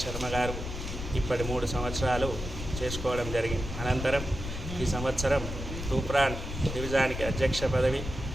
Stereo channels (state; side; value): noise; left; rumble, 6 dB below the sound